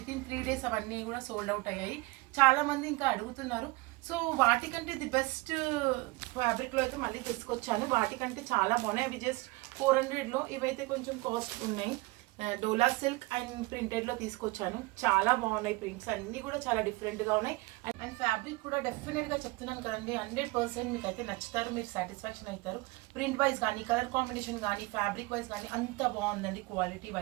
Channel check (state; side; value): quieter; left; 23.3 dB